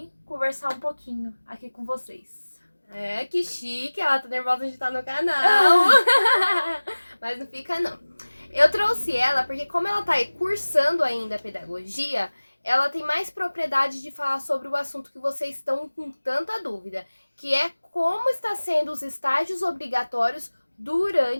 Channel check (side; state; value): both; inverted; correlation -1.00